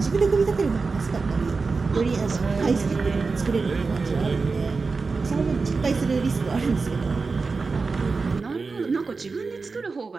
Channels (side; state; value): left; quieter; 4.3 dB